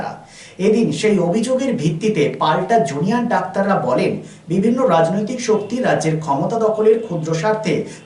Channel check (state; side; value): identical; both; correlation 1.00